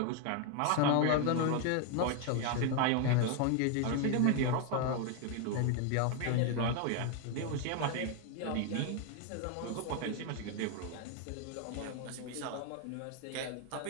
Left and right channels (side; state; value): both; different; correlation 0.01